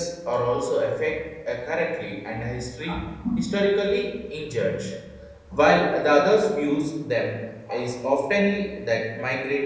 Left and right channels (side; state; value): both; identical; correlation 1.00